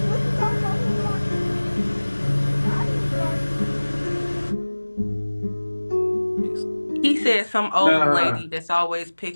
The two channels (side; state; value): both; inverted; correlation -1.00